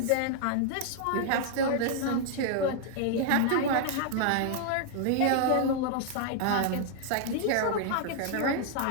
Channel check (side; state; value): both; different; correlation 0.00